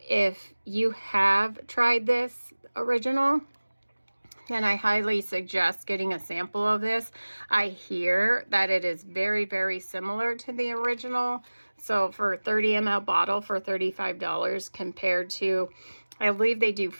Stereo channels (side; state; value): both; inverted; correlation -1.00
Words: if you have tried this original, then I highly suggest getting a sample of this. I hear that it is very, very similar to the original. So for a 30 ml bottle for $35 compared to, I believe they do